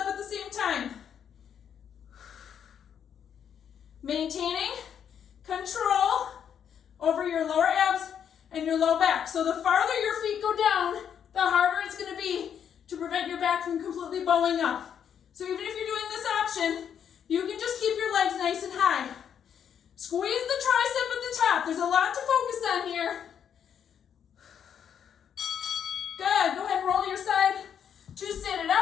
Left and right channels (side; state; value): right; quieter; 8.4 dB